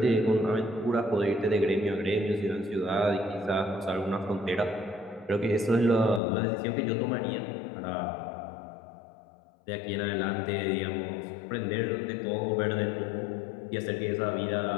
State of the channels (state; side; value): drops out; right; at 6.2 s